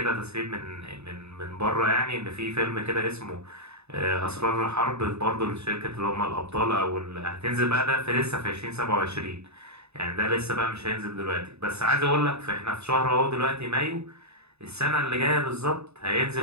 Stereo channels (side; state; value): left; late; 0.80 ms